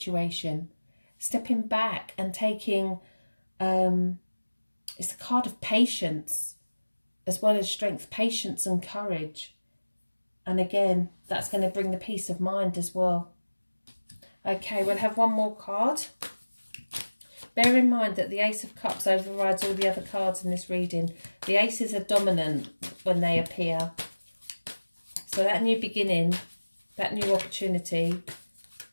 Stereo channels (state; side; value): inverted; both; correlation -1.00